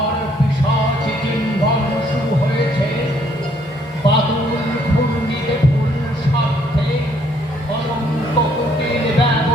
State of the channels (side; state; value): both; normal; correlation 0.66